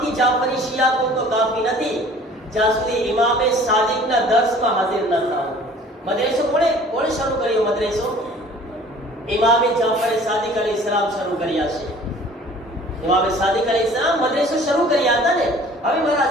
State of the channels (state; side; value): normal; both; correlation 0.50